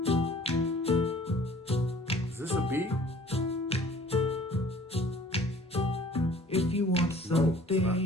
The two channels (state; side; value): normal; both; correlation 0.51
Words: If you want something,